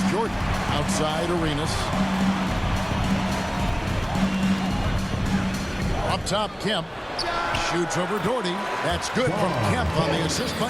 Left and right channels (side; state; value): both; identical; correlation 1.00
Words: Jordan. Outside Arenas. Up top, Kemp. Shoots over Doherty. That's good from Kemp on the assist